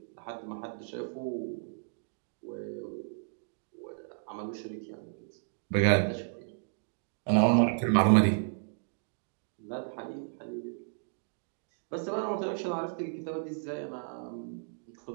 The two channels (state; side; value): silent; left; digital silence